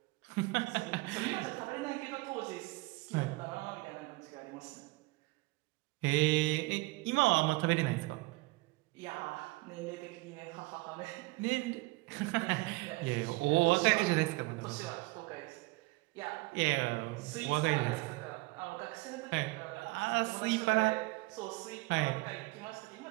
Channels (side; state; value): left; quieter; 23.4 dB